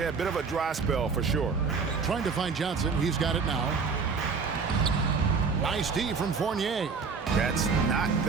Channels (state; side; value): quieter; left; 5.2 dB